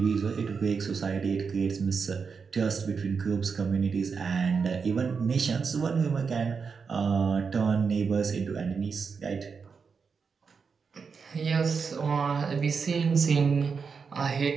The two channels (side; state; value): left; quieter; 5.5 dB